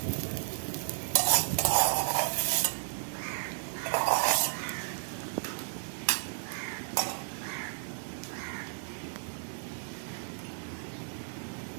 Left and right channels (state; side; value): silent; left; digital silence